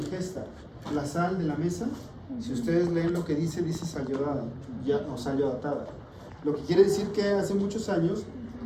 La sal de la mesa, si ustedes leen lo que dice sal yodada, o sal yodatada. Lo que quiere decir que hace muchos años,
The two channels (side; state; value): both; identical; correlation 1.00